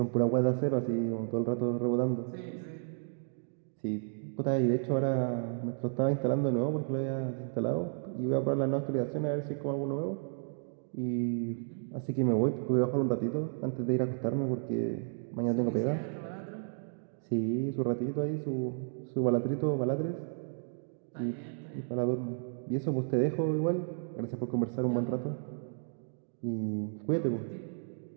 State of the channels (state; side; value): silent; left; digital silence